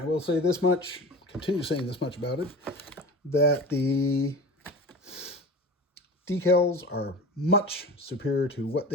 will say this much, continue saying this much about it, that the decals are much superior to what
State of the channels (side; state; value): both; normal; correlation 0.34